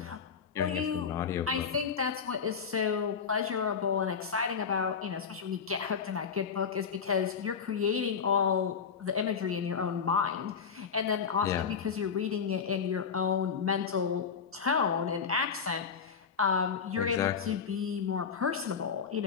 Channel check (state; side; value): quieter; right; 6.4 dB